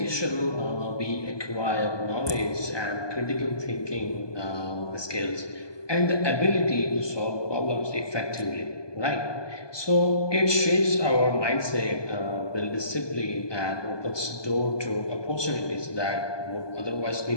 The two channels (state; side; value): late; right; 1.2 ms